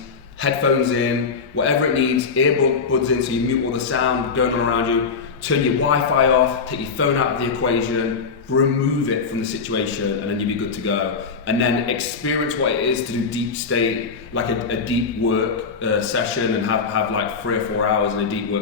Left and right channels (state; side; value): quieter; right; 5.2 dB